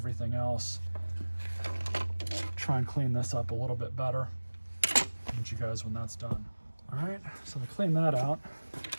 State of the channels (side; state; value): both; inverted; correlation -1.00